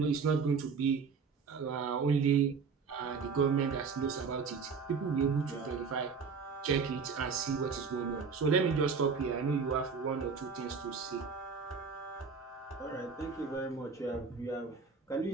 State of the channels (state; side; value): quieter; left; 5.4 dB